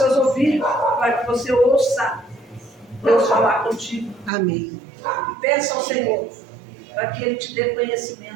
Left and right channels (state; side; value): drops out; left; at 4.3 s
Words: ouvidos para que você ouça Deus falar contigo. Amém. E peça ao Senhor para que Ele te dê